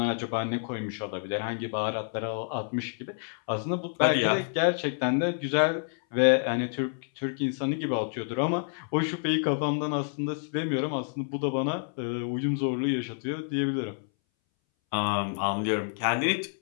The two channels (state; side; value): silent; right; 59 dB below the other